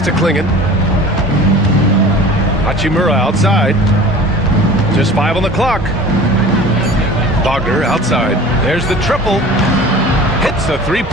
to Klingon. Hachimura outside. Just 5 on the clock. Wagner outside. There's the triple. Hits the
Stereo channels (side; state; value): both; normal; correlation 0.41